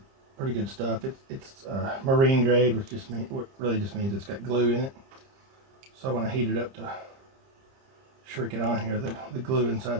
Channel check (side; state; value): left; late; 30 ms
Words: pretty good stuff. It's marine grade, which really just means it's got glue in it. So when I heat it up to shrink it on here, the glue